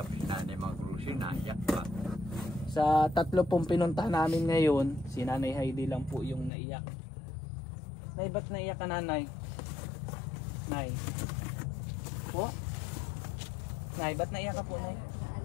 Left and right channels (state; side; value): drops out; right; at 6.5 s